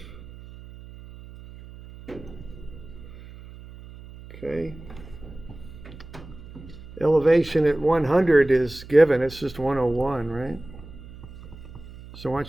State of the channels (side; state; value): right; noise; hum, 16 dB below the sound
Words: Okay. Elevation at 100 is given, it's just 101, right? So